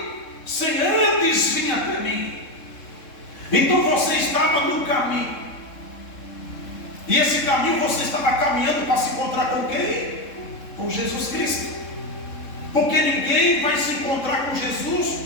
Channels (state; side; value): late; right; 3.7 ms